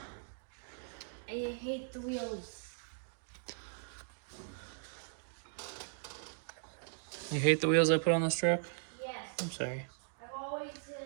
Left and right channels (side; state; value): left; silent; digital silence